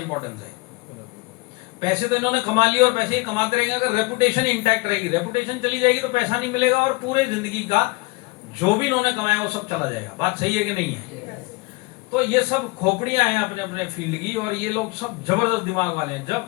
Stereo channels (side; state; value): right; quieter; 25.5 dB